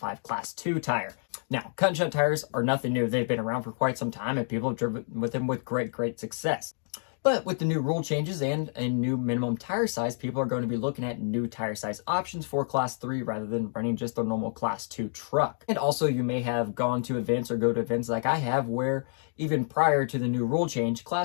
Class 2 tire. Now, cut and shunt tires are nothing new. They've been around for quite some time, and people have driven with them with great success. But with the new rule changes and a new minimum tire size, people are going to be looking at new tire size options for Class 3 rather than running just a normal Class 2 truck. And also, you may have gone to events or go to events like I have where even prior to the new rule change,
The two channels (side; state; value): right; silent; digital silence